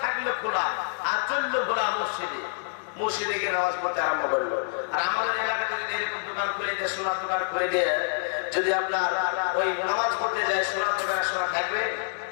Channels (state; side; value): silent; right; 60 dB below the other